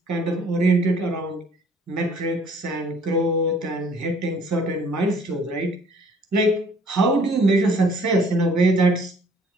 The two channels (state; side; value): normal; both; correlation 0.58